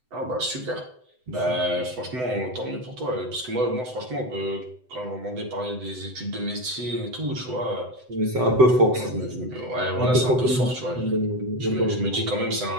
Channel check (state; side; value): late; left; 7.9 ms